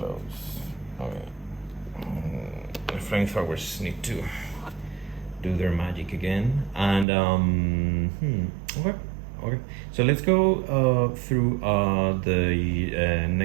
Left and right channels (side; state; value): left; drops out; at 7.1 s